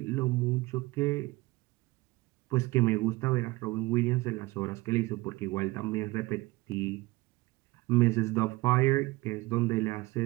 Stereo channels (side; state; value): left; quieter; 21.0 dB